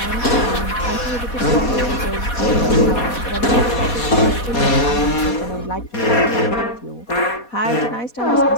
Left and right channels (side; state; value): right; late; 4.2 ms